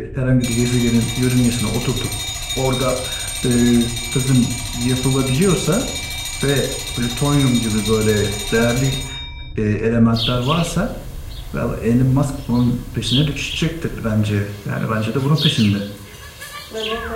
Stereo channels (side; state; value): both; identical; correlation 1.00